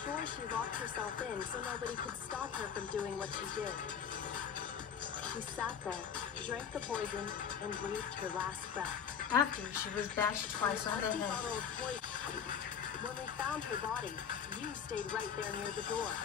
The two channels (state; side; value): quieter; right; 7.7 dB